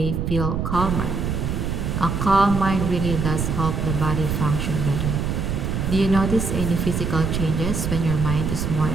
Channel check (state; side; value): noise; right; rumble, 1 dB below the sound